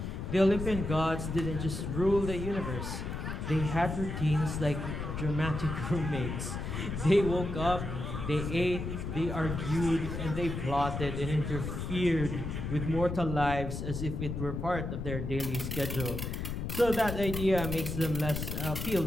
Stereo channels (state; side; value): noise; left; rumble, 4 dB below the sound